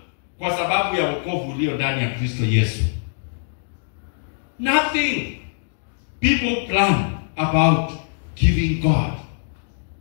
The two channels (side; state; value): right; silent; digital silence